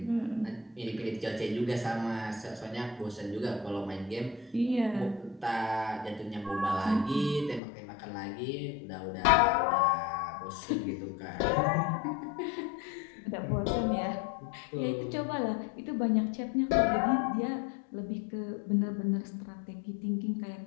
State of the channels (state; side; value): drops out; right; at 7.6 s